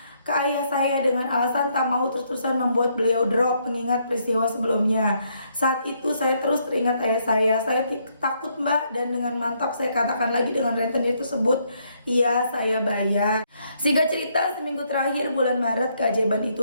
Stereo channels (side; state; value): both; inverted; correlation -0.73